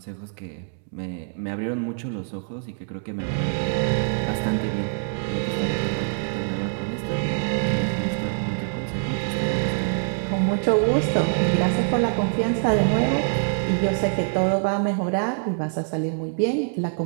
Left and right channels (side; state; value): left; silent; digital silence